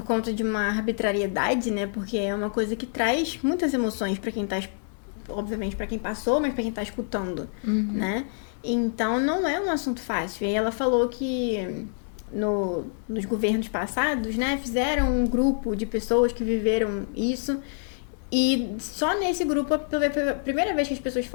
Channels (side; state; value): right; silent; digital silence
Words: conta de uma arbitrariedade, né? Porque é uma coisa que traz muitas emoções para quem tá, obviamente para quem passou, mas para quem tá escutando, né? Então, não é um assunto fácil. E ela falou que nos governos passados, né, fizeram um grupo de pessoas que viveram isso. E só nesse grupo foi a primeira vez que as pessoas